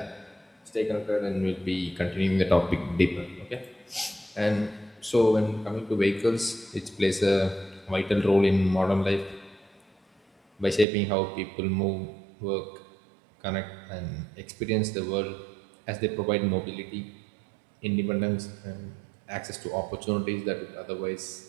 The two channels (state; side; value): drops out; left; at 10.9 s